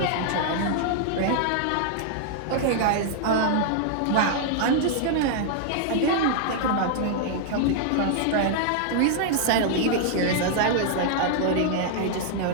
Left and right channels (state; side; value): different; both; correlation -0.01